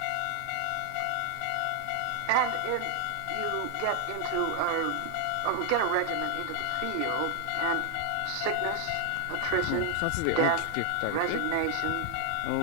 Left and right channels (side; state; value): both; different; correlation 0.00